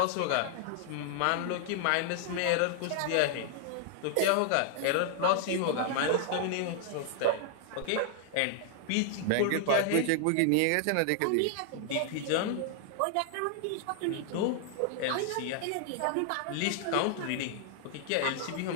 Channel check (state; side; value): different; both; correlation 0.00